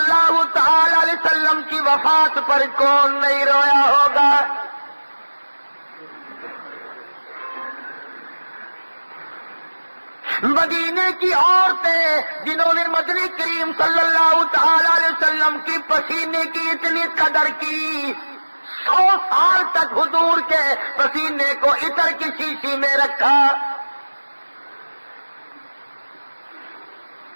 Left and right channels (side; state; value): both; inverted; correlation -1.00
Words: تعالی علیہ وسلم کی وفات پر کون نہیں رویا ہوگا؟ مدینے کی عورتیں جنہوں نے مدنی کریم صلی اللہ تعالی علیہ وسلم کی پسینے کی اتنی قدر کی، 100 سال تک حضور کے پسینے کو عطر کی شیشی میں رکھا۔